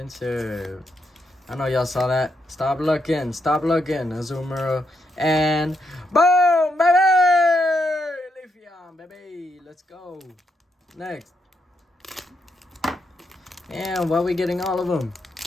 I know y'all saw that. Stop looking. Stop looking. Azumarill. And boom, baby! Leafeon, baby. Let's go. Next. And why are we getting all of them?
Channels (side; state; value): both; normal; correlation 0.80